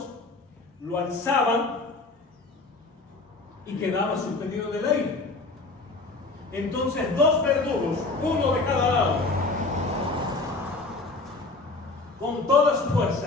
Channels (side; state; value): right; quieter; 3.4 dB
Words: lo alzaban y quedaba suspendido del aire. Entonces 2 verdugos, uno de cada lado, con toda su